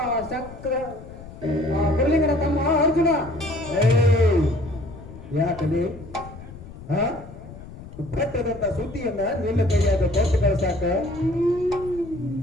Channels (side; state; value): left; noise; rumble, 15 dB below the sound